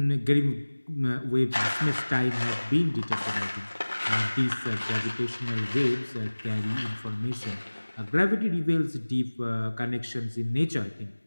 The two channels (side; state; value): both; inverted; correlation -1.00